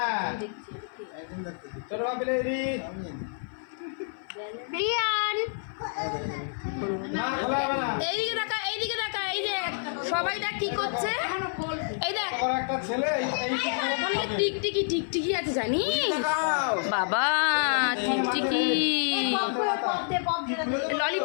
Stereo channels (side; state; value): right; silent; 55 dB below the other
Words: চলো ভাবি লাইরি রিয়ান না খোলা হবে না এইদিকে তাকা এই যে সবাইটা কি করছে এই দেখ আমার একটা ছেলে এই ওখানে টিকটিকি আছে জানিস বাবা টিকটিকি